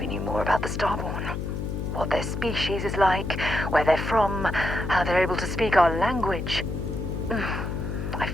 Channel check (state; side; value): noise; left; hum, 4 dB below the sound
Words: knew more about the Starborn. What their species is like, where they're from, how they're able to speak our language. I